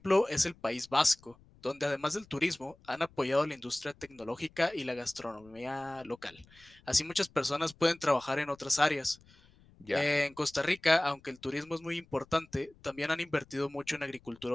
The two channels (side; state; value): left; noise; rumble, 27 dB below the sound